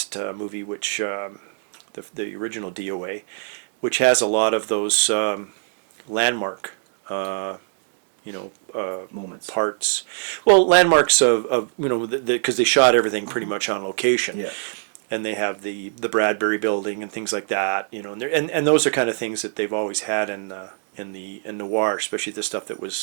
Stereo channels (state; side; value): silent; left; digital silence